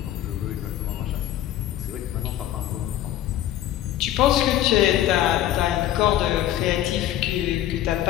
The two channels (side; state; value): right; quieter; 12.7 dB